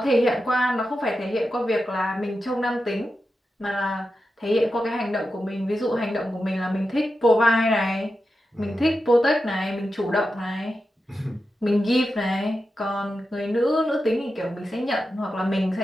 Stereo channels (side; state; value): both; normal; correlation 0.90